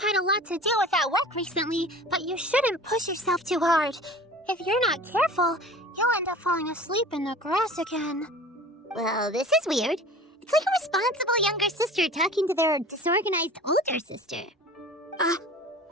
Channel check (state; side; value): normal; both; correlation 0.42